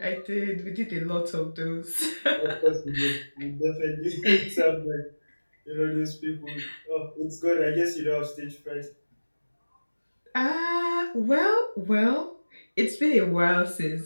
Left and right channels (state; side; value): inverted; both; correlation -1.00